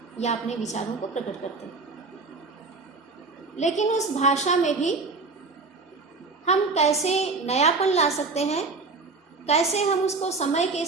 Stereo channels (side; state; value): left; quieter; 3.9 dB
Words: या अपने विचारों को प्रकट करते हैं। लेकिन उस भाषा में भी हम कैसे नयापन ला सकते हैं, कैसे हम उसको समय के